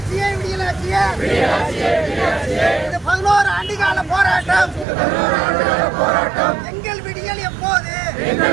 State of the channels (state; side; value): drops out; left; at 4.9 s